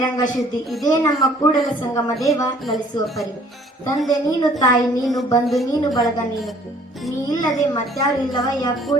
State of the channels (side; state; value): both; normal; correlation 0.57